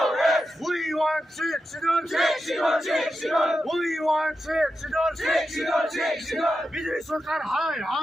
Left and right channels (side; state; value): both; normal; correlation 0.89